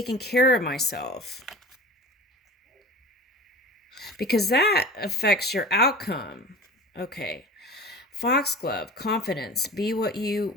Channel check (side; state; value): both; normal; correlation 0.37